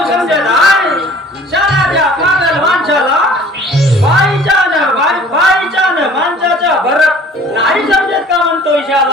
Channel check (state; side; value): normal; both; correlation 0.49